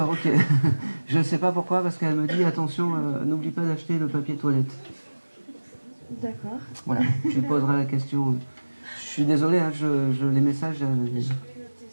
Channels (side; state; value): both; inverted; correlation -1.00